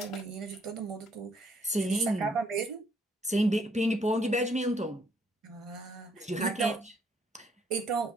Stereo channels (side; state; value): both; normal; correlation 0.68